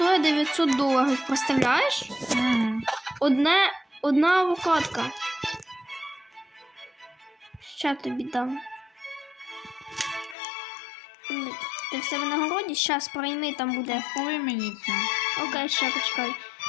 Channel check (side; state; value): right; drops out; at 10.4 s